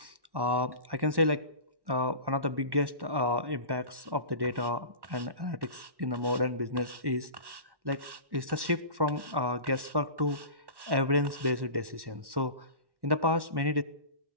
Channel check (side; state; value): left; late; 1.1 ms